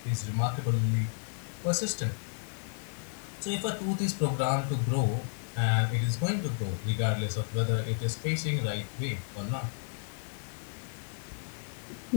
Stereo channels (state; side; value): silent; right; digital silence